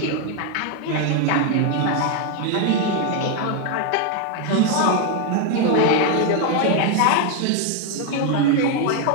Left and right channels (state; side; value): different; both; correlation 0.01